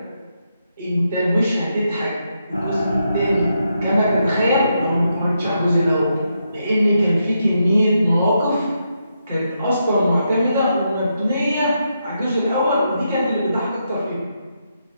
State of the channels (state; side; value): inverted; both; correlation -0.82